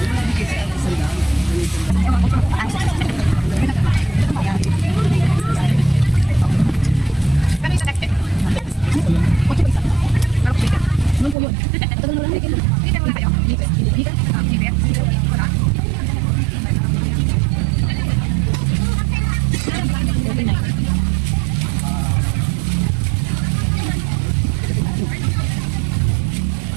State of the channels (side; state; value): left; drops out; at 11.4 s